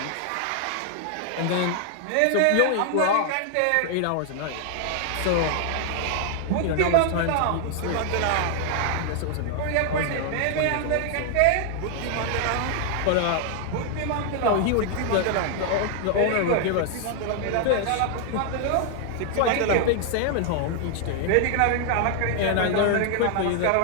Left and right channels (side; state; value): both; different; correlation 0.00